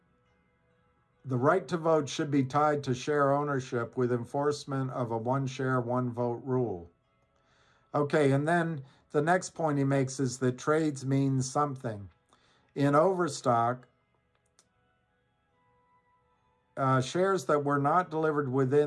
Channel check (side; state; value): both; identical; correlation 1.00